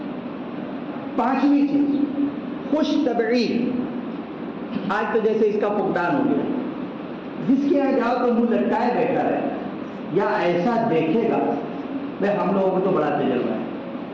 پانچویں چیز، خوش طبعی. آج تو جیسے اس کا فقدان ہو گیا، جس کے یہاں جاؤ تو منہ لٹکائے بیٹھا رہے یا ایسا دیکھے گا. بھائی ہم لوگوں کو تو بڑا تجربہ ہے،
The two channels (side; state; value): both; identical; correlation 1.00